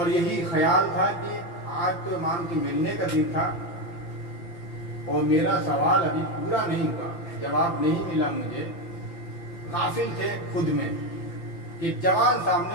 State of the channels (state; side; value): late; right; 5.9 ms